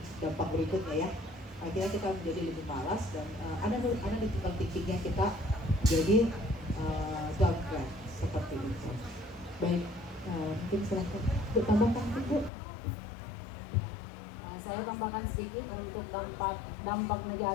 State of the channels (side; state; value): right; drops out; at 12.5 s